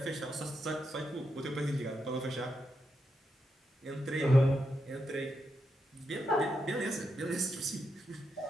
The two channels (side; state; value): both; normal; correlation 0.84